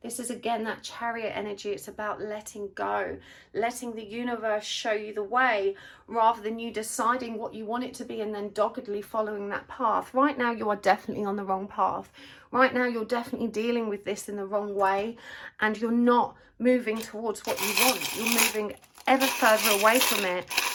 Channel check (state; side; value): identical; both; correlation 1.00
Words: This is again that chariot energy. It's about letting go, letting the universe show you the way, rather than you deciding what you want it to be and then doggedly following that path. Right now you are definitely on the wrong path. Right now you're definitely dealing with this in the wrong way, and you're not moving towards what you want. You're moving ever further away from it,